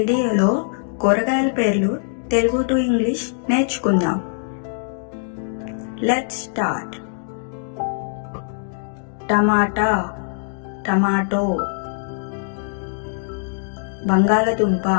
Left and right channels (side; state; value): right; silent; digital silence